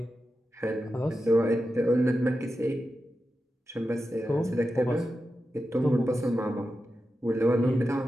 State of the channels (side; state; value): both; normal; correlation 0.90